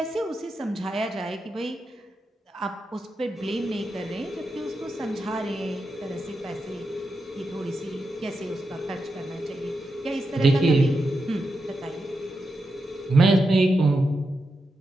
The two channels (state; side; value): normal; both; correlation 0.87